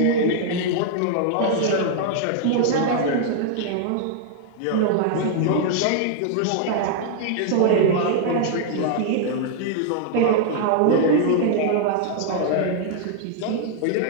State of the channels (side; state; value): both; different; correlation 0.00